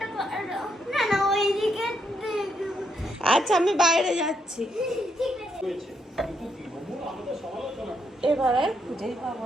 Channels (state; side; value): normal; both; correlation 0.77